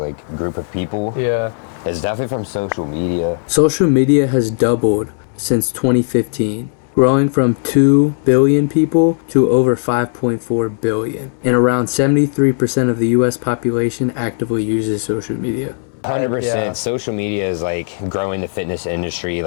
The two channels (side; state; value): right; silent; 67 dB below the other